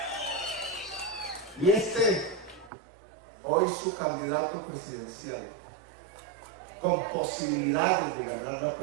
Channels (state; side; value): drops out; left; at 2.7 s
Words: y hoy su candidato presidencial, con posibilidades de ganar la